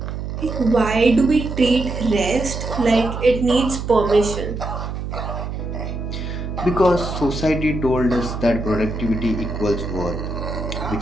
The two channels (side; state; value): right; noise; hum, 5 dB below the sound